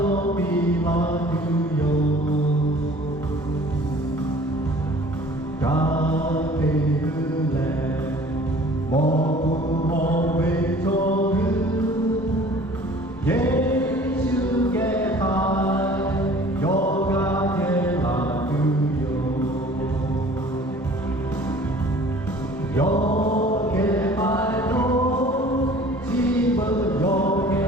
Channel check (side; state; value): both; normal; correlation 0.49